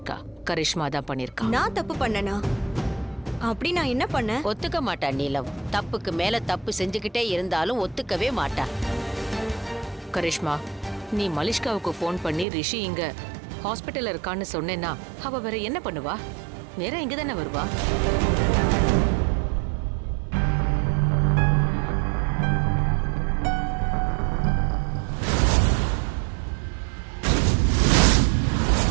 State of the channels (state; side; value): drops out; left; at 12.5 s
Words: கரிஷ்மா தான் பண்ணிருக்கா. நான் தப்பு பண்ணனா? அப்படி நான் என்ன பண்ணேன்? ஒத்துக்க மாட்டா நீலம். தப்புக்கு மேல தப்பு செஞ்சுக்கிட்டே இருந்தாலும் ஒத்துக்கவே மாட்டா. கரிஷ்மா, நீ மலிஷ்காவுக்கு ஃபோன் பண்ணி ரிஷி இங்க ஹாஸ்பிட்டல்ல இருக்கான்னு சொன்னேன்னா அவ வேற என்ன பண்ணுவா? நேரா இங்க தானே வருவா.